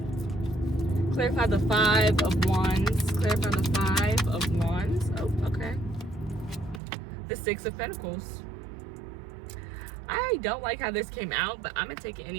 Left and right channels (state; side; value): drops out; left; at 6.8 s